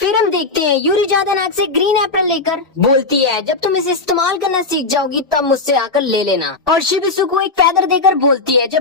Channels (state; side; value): quieter; right; 3.6 dB